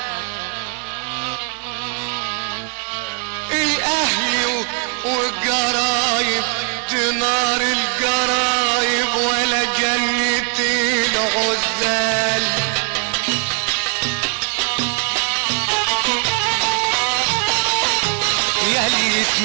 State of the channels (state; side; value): quieter; left; 39.9 dB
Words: الاهل والقرايب، دينار القرايب ولا جنة الغزال. ياللي